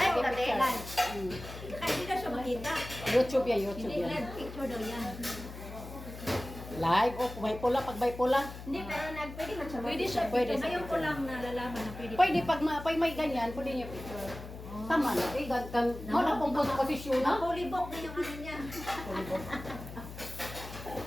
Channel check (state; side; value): noise; left; hum, 12 dB below the sound